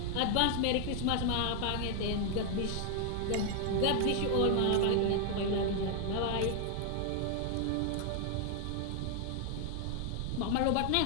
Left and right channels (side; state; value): both; different; correlation 0.00